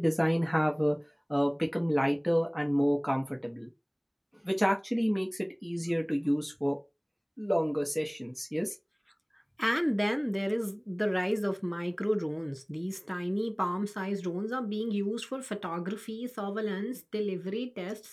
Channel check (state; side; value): identical; both; correlation 1.00